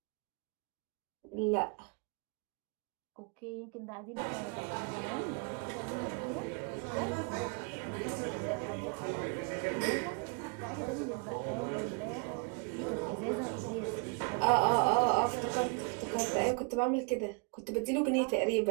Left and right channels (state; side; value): quieter; left; 33.3 dB